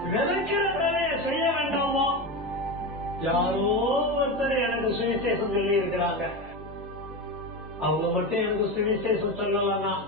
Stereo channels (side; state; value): both; normal; correlation 0.20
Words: விதைக்கிற வேலையை செய்ய வேண்டாமா? யாரோ ஒருத்தர் எனக்கு சுவிசேஷம் சொல்லி இருக்கிறாங்க, அவங்க மட்டும் எனக்கு சுவிசேஷம் சொல்லலன்னா,